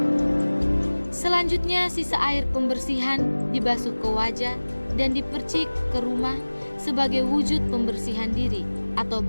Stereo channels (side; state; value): both; inverted; correlation -1.00